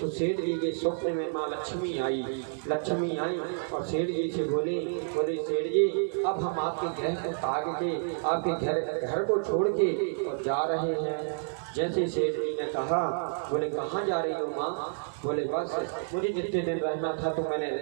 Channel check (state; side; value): silent; left; digital silence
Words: सेठ जी के स्वप्न में माँ लक्ष्मी आई और सेठ जी से बोले सेठ जी, अब हम आपके ग्रह को ताक के आपके घर को छोड़ के और जा रहे हैं। जैसे सेठ जी ने कहा, बोले कहाँ जा रही हो माँ? बोले बस मुझे जितने दिन रहना था तो मैंने